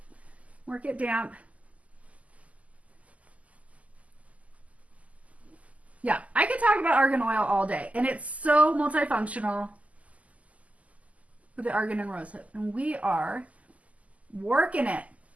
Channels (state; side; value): late; left; 0.071 ms